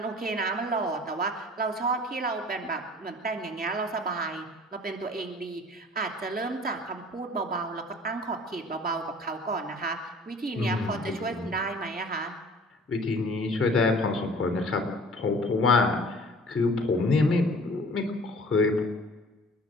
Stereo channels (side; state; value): both; normal; correlation 0.48